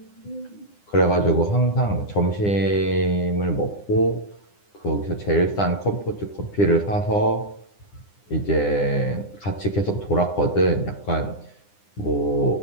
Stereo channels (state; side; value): late; right; 9.9 ms